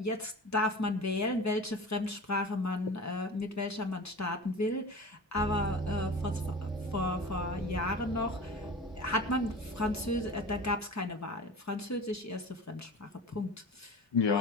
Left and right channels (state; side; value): normal; both; correlation 0.35